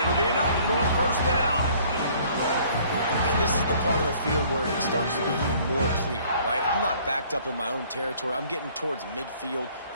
be enough for a first down. And this is the part of the field where it starts to be even more clear, right? I'm not backed up in my own territory. I'm getting towards midfield.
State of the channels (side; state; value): both; inverted; correlation -0.57